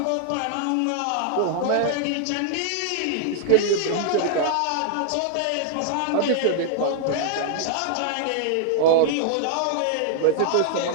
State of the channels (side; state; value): both; different; correlation -0.01